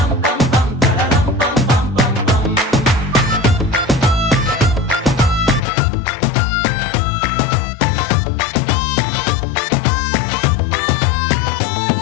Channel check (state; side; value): drops out; right; at 5.7 s